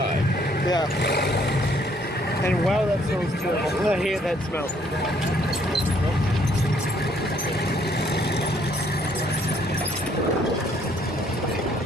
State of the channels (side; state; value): both; normal; correlation 0.65